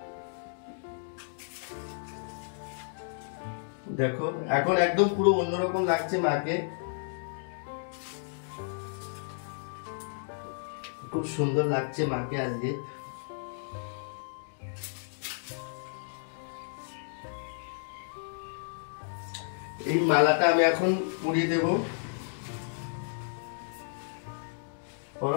দেখো এখন একদম পুরো অন্যরকম লাগছে মাকে, খুব সুন্দর লাগছে মাকে আজকে। এই মালাটা আমি এখন পরিয়ে দেব।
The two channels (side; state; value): right; silent; digital silence